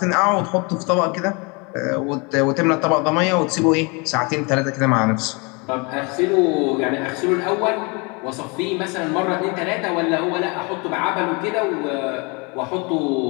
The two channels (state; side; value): quieter; right; 30.0 dB